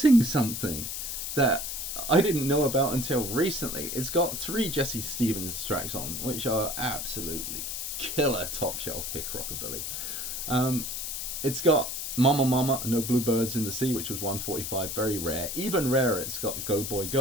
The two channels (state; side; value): noise; left; hiss, 4 dB below the sound